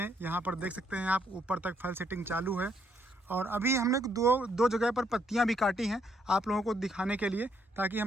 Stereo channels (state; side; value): normal; both; correlation 0.72